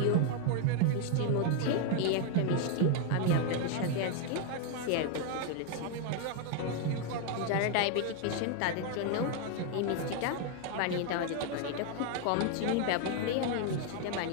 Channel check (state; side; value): different; both; correlation 0.01